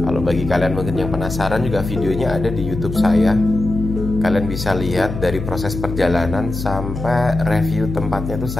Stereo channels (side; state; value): left; noise; hum, 6 dB below the sound